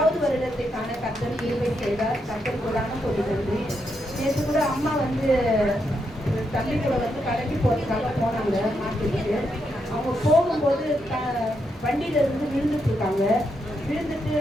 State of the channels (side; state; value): both; normal; correlation 0.81